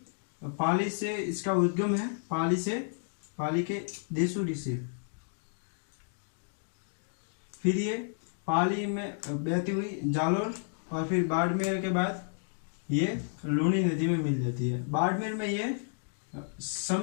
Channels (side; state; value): right; silent; digital silence